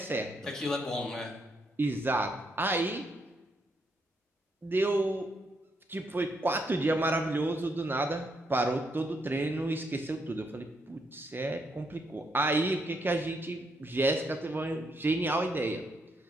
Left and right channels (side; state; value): both; normal; correlation 0.77